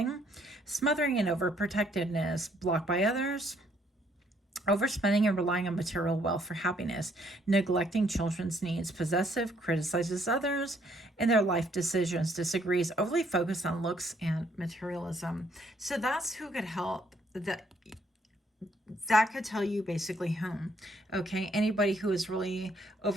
Smothering and overprotectiveness, blocked by others, overspending and relying on material wealth for happiness, neglecting children's needs, possessive, criticizes others in their life decisions, disagrees, overly focused on looks and materialism. So that's who could help. That could tell you basically whom. Okay, anybody who is really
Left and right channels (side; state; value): both; normal; correlation 0.68